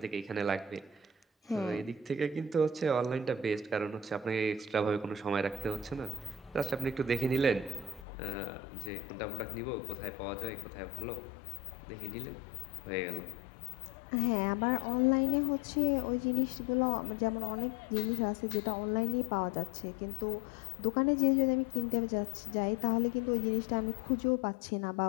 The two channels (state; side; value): drops out; right; at 8.1 s